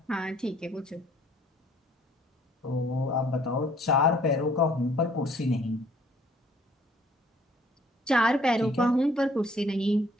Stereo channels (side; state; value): both; normal; correlation 0.59